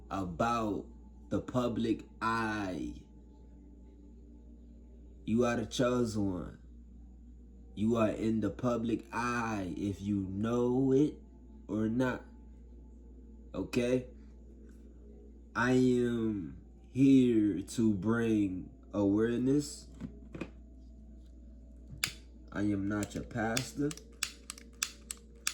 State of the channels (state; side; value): identical; both; correlation 1.00